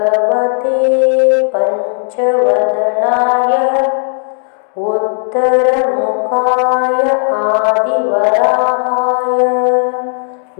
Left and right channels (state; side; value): silent; right; 65 dB below the other